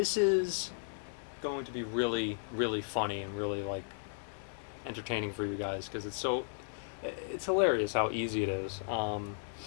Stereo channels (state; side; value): silent; right; digital silence